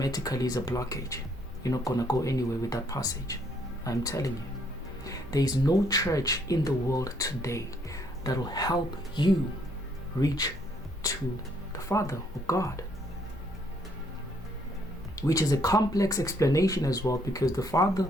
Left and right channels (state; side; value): normal; both; correlation 0.68